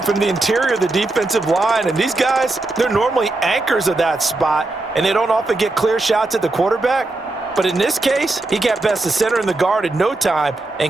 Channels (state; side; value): quieter; left; 3.0 dB